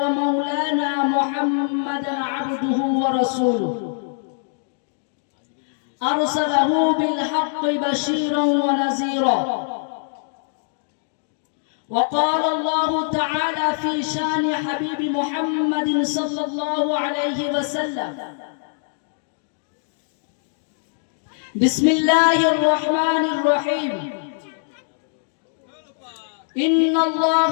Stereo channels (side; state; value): right; silent; digital silence